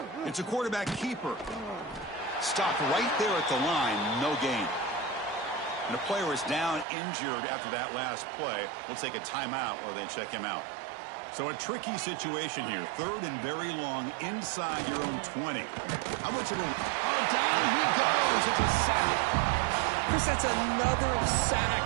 It's a quarterback keeper. Stopped right there at the line. No gain. And a player is down injured after that last play. We'll take a timeout while they check him out. So a tricky situation here. Third and very long inside your own 20. How much of a... Oh, down he goes. It's a sack. Chris, that's another sack.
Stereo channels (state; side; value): drops out; left; at 6.9 s